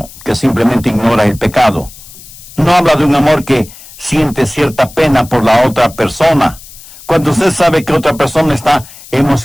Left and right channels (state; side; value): noise; left; hiss, 19 dB below the sound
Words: que simplemente ignora el pecado. No habla de un amor que siente cierta pena por la otra persona. Cuando usted sabe que otra persona está